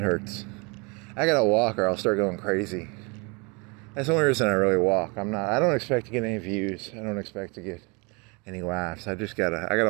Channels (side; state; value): left; quieter; 30.4 dB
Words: hurts. I gotta walk or I'll start going crazy. That's the only reason I really walk. I don't expect to get any views. I don't expect to get any laughs. I